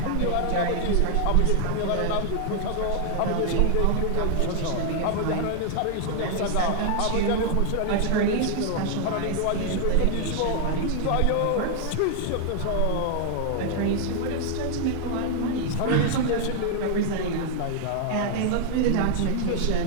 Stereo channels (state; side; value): different; both; correlation 0.00